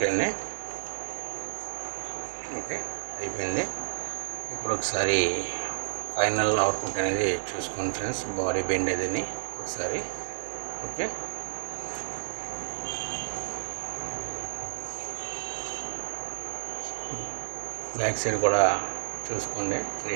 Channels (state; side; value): silent; left; digital silence